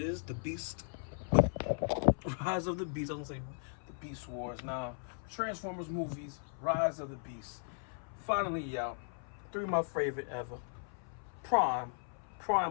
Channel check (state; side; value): silent; right; 53 dB below the other